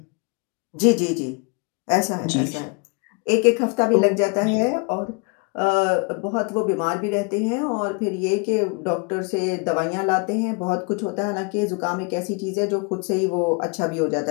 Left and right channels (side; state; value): right; quieter; 32.9 dB